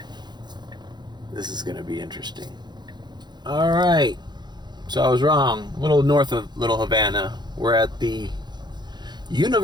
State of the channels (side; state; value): left; late; 0.21 ms